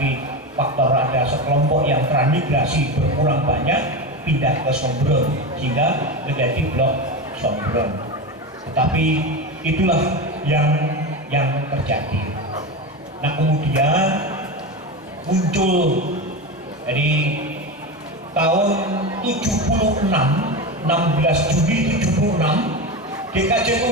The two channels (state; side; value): normal; both; correlation 0.20